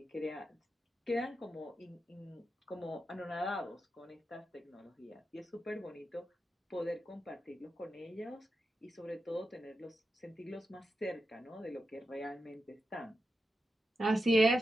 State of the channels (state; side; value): normal; both; correlation 0.88